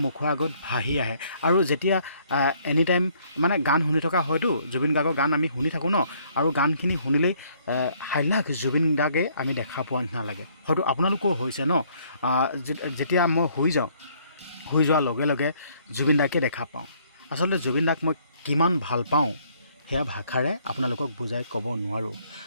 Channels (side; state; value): both; inverted; correlation -0.64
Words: মুখৰ আগত ভাহি আহে। আৰু যেতিয়া এনি টাইম মানে গান শুনি থকা হয়তো, জুবিন গাৰ্গৰ গান আমি শুনি থাকোঁ ন, আৰু গানখিনি শুনিলেই হাইলাখ জুবিন গাৰ্গে আমি দেখা পোৱা নিচিনা লাগে। হয়তো আপোনালোকৰো হৈছে ন, যেতিয়া মই শুই যাওঁ, শুই যোৱাৰ লগে লগে জুবিন দাকে দেখা পাওঁ। আচলতে জুবিন দাক মই কিমান ভাল পাওঁ সেয়া ভাষাৰে আপোনালোকক বুজাই ক'ব নোৱাৰোঁ।